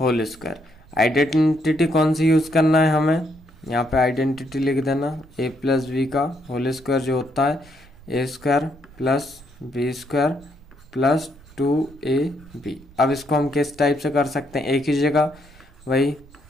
स्क्वायर। आइडेंटिटी कौन सी यूज करना है हमें, यहाँ पे आइडेंटिटी लिख देना a प्लस बी का होल स्क्वायर जो होता है A square plus B square plus 2ab। अब इसको हम किस टाइप से कर सकते हैं, a की जगह वही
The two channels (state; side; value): noise; right; rumble, 24 dB below the sound